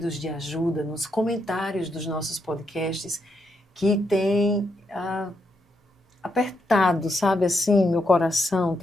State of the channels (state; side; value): normal; both; correlation 0.80